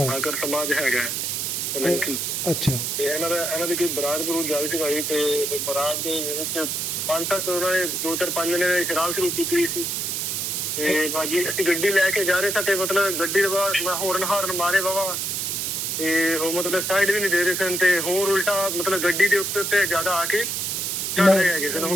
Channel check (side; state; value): right; noise; hiss, 1 dB below the sound